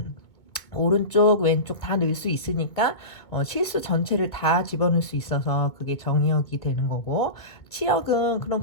오른쪽 왼쪽 다 넣을 수 있으니까 실수 전체를 다 집어넣을 수 있어서 그게 정의역이 되는 거고, 치역은 그럼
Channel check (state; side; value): late; right; 2.0 ms